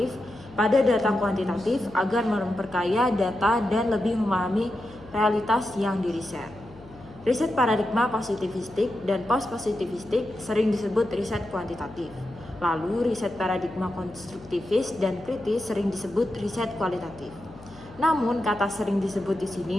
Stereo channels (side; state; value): left; noise; hum, 20 dB below the sound